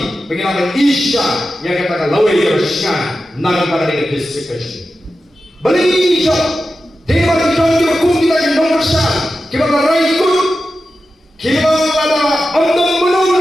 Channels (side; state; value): both; normal; correlation 0.92